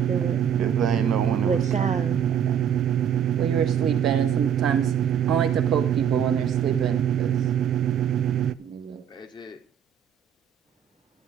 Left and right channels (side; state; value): left; quieter; 8.8 dB